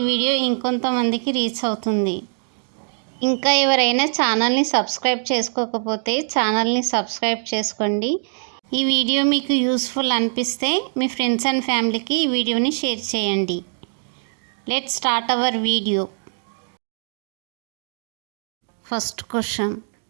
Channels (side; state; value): left; silent; 61 dB below the other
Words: వీడియో ఇంకొంతమందికి రీచ్ అవుతుంది. ఇంకా ఎవరైనా ఛానల్ని సబ్స్క్రైబ్ చేసుకోకపోతే ఛానల్ని సబ్స్క్రైబ్ చేసుకోండి. ఈ వీడియో మీకు యూస్ఫుల్ అనిపిస్తే మీ ఫ్రెండ్స్ అండ్ ఫ్యామిలీకి ఈ వీడియోని షేర్ చేయండి. Let's start our video. First question,